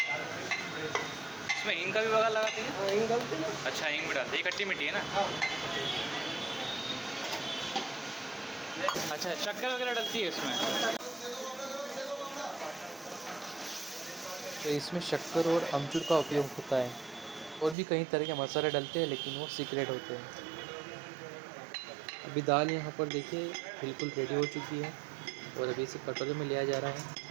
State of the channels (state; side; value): drops out; left; at 17.8 s